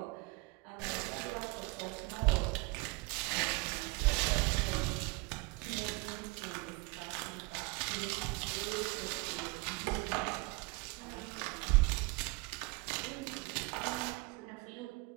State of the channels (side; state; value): left; quieter; 25.7 dB